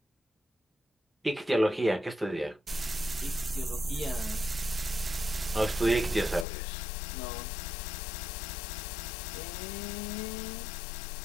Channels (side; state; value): right; drops out; at 6.5 s